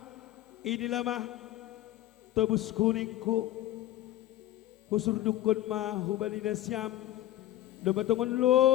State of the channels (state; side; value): quieter; right; 14.2 dB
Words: Inilah mah tobus kuningku husur dukun mah hubali nasyam dumatungon